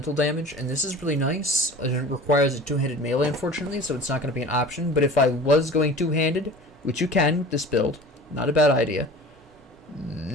damage, and this is really nice. It requires a two-handed melee, unfortunately, so it's not going to be an option. But if I was going two-handed, which you can with this build, not a bad idea,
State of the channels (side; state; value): both; normal; correlation 0.40